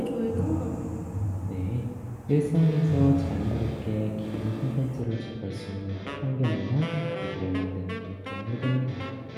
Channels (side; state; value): both; identical; correlation 1.00